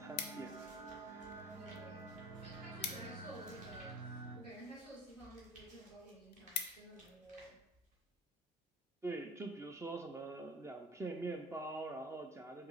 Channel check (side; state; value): both; normal; correlation 0.41